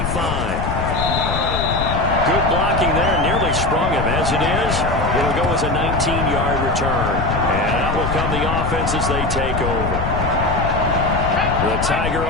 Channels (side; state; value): left; noise; rumble, 3 dB below the sound